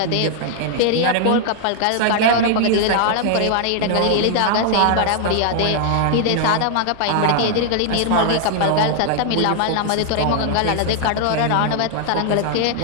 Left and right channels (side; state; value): both; different; correlation 0.00